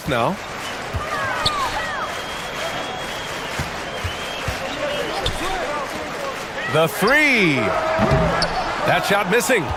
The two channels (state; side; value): identical; both; correlation 1.00